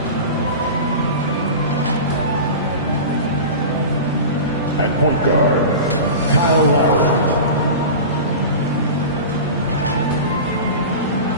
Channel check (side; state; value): both; inverted; correlation -0.30